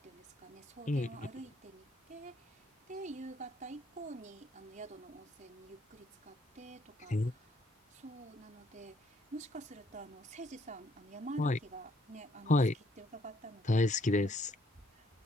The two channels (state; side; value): normal; both; correlation 0.67